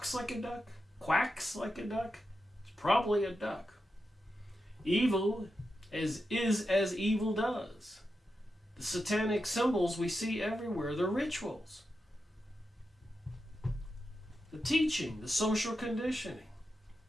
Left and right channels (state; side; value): normal; both; correlation 0.89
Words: like a duck, quacks like a duck, it's probably a duck. Evil is as evil does. The satanic symbols we see everywhere, the rituals, the teaching, the social conditioning.